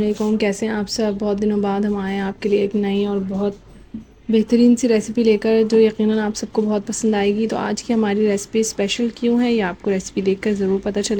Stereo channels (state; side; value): identical; both; correlation 1.00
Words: कैसे हैं आप सब? बहुत दिनों बाद हम आए हैं आपके लिए एक नई और बहुत बेहतरीन सी रेसिपी लेकर, जो यकीनन आप सबको बहुत पसंद आएगी। तो आज की हमारी रेसिपी स्पेशल क्यों है, ये आपको रेसिपी देखकर ज़रूर पता